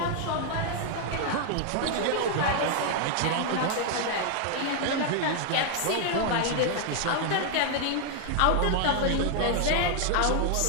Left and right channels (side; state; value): both; different; correlation 0.00